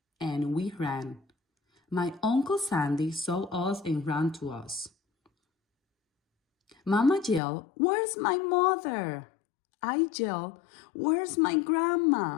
and we ran. My Uncle Sandy saw us and ran to us. Mama yelled, "Where's my mother?" I yelled, "Where's my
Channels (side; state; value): right; drops out; at 7.4 s